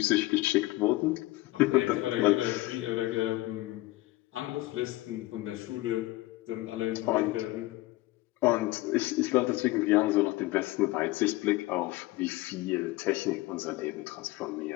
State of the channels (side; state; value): right; quieter; 19.0 dB